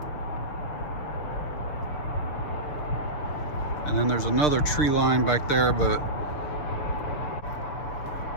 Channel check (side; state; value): right; late; 6.6 ms